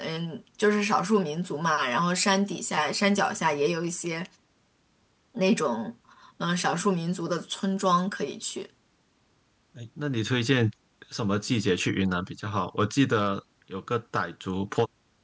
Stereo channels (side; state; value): both; identical; correlation 1.00